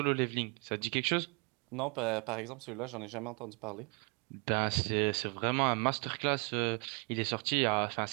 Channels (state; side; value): quieter; left; 33.9 dB